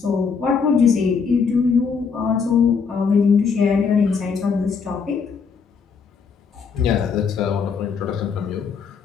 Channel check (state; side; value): quieter; right; 5.7 dB